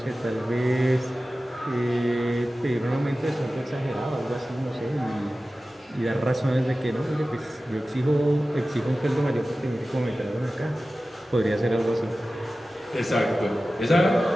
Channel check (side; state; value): both; normal; correlation 0.95